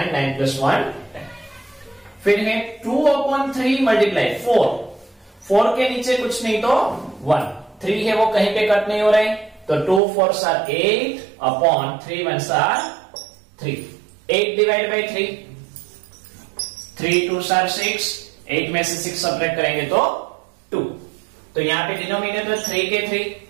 9 plus 1 10। फिर है 2/3 मल्टीप्लाई 4। 4 के नीचे कुछ नहीं तो 1। 3 है वो कहीं पे कट नहीं हो रहे तो 2 4s are 8/3 1s are 3। 8 divide by 3, 3 2s are 6, 8 में से 6 सब्ट्रैक्ट करेंगे तो 2। तो यहां पे डिनोमिनेटर 3 के 3,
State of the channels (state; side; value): drops out; left; at 10.0 s